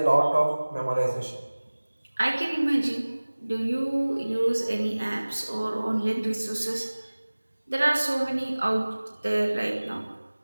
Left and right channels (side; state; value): both; inverted; correlation -1.00